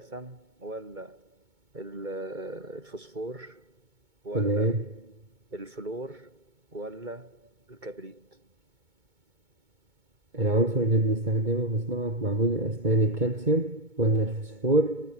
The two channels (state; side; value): late; left; 2.2 ms